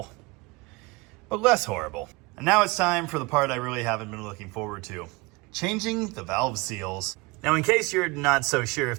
but less horrible. And now it's time for the part I really haven't been looking forward to. Changing the valve seals. Now, in case you're not so sure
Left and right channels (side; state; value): left; quieter; 24.6 dB